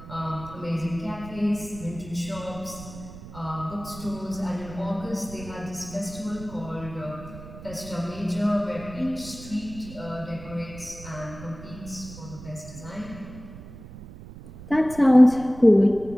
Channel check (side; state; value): right; noise; rumble, 15 dB below the sound